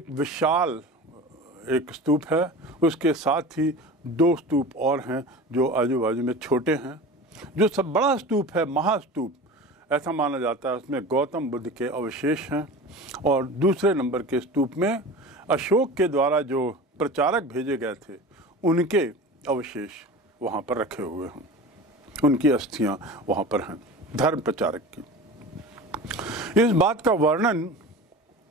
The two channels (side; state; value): both; normal; correlation 0.34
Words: विशाल एक स्तूप है। उसके साथ ही दो स्तूप और हैं जो आजू बाजू में छोटे हैं। जो सब बड़ा स्तूप है, महास्तूप, ऐसा माना जाता है उसमें गौतम बुद्ध के अवशेष हैं, और दूसरे नंबर के स्तूप में अशोक के द्वारा जो प्रचारक भेजे गए थे उनके अवशेष वहाँ पर रखे हुए हैं, उनकी अस्थियाँ वहाँ पर हैं, धर्म प्रचारक की। इस बात का वर्णन